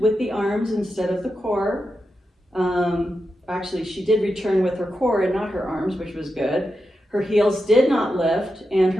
the arms instead of the core. Actually, she did return with her core and not her arms, which was good. Her heels did not lift, and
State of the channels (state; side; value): normal; both; correlation 0.88